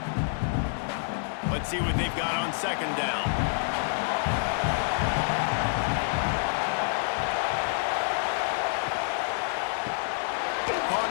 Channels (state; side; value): silent; right; 59 dB below the other